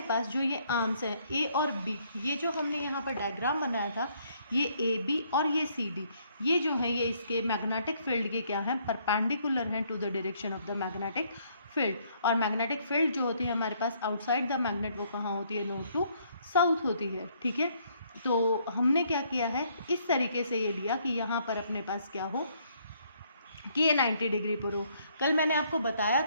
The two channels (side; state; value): both; inverted; correlation -0.68